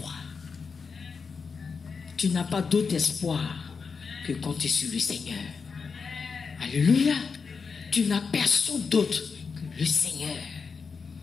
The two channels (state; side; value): quieter; right; 5.3 dB